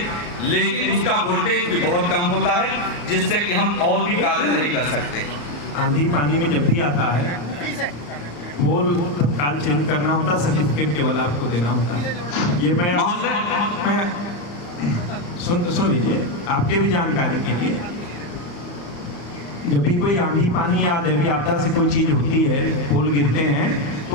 लेकिन उसका वोल्टेज भी बहुत कम होता है, जिससे कि हम और भी कार्य नहीं कर सकते। आंधी पानी में जब भी आता है पोल तत्काल चेंज करना होता, सर्टिफिकेट केवल आपको देना होता है। ये मैं सुन लीजिए आपके भी जानकारी के लिए, जब भी कोई आंधी पानी या दैवीय आपदा से कोई चीज होती है, पोल गिरते हैं,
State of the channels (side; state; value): right; late; 34 ms